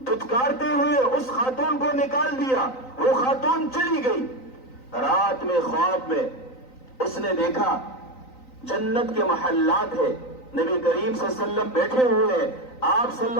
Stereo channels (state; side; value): late; right; 3.9 ms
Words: دھتکارتے ہوئے اس خاتون کو نکال دیا۔ وہ خاتون چلی گئی۔ رات میں خواب میں اس نے دیکھا جنت کے محلات ہے، نبی کریم صلی اللہ علیہ وسلم بیٹھے ہوئے ہیں، آپ صلی